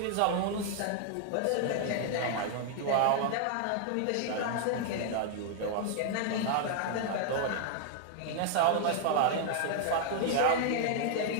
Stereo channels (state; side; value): different; both; correlation 0.00